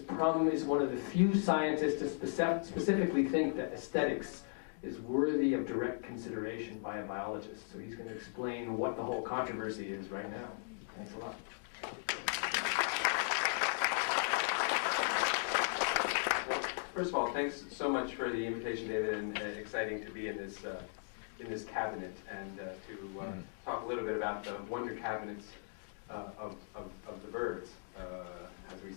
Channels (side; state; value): right; silent; digital silence